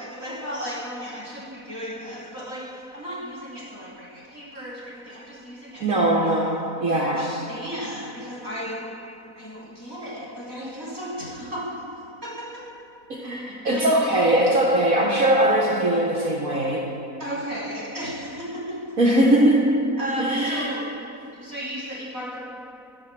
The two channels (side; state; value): left; late; 4.1 ms